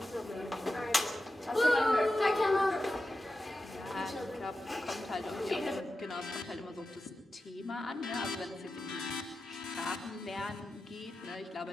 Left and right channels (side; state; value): both; normal; correlation 0.92